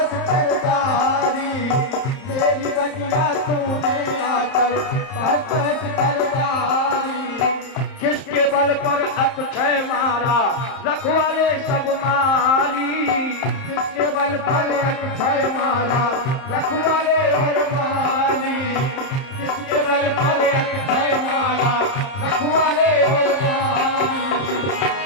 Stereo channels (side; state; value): right; late; 30 ms